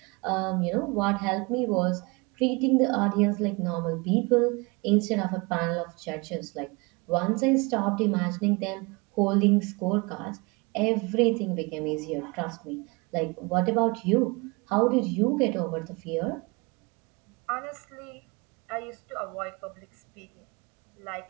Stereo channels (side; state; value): left; quieter; 27.5 dB